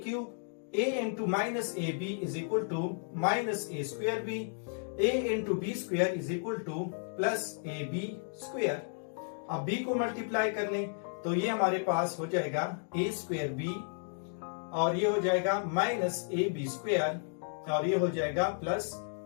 cube, a into minus a b is equal to minus a square b, a into b square is equal to plus a b square. अब b को multiply कर लें तो ये हमारे पास हो जाएगा a स्क्वायर बी, और ये हो जाएगा माइनस ए बी स्क्वायर, और ये हो जाएगा प्लस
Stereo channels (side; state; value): right; silent; digital silence